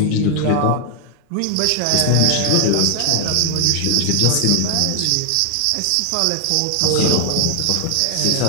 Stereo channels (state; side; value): different; both; correlation 0.00